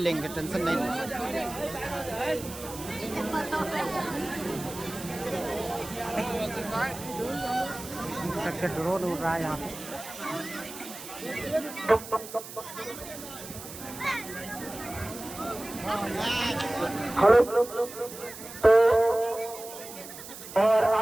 टेंशन नहीं। ड्रोन उड़ रहा है यहाँ पे। हेलो। तो और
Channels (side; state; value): right; noise; hiss, 13 dB below the sound